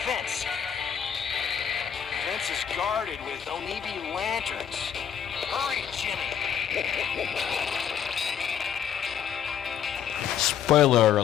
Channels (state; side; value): quieter; right; 8.7 dB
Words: fence. The fence is guarded with Onibi lanterns. Hurry, Jimmy! Spoiler